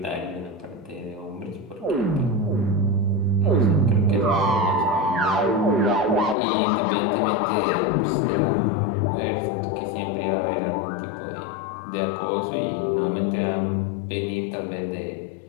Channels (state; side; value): drops out; right; at 6.4 s